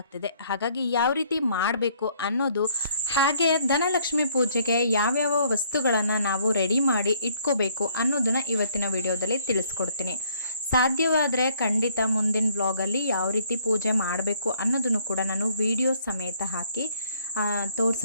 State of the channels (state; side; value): inverted; both; correlation -0.63